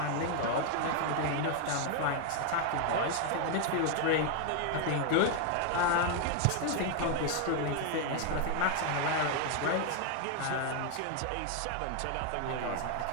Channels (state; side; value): different; both; correlation 0.00